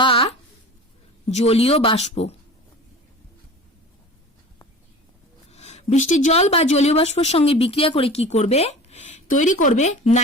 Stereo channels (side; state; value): both; normal; correlation 0.38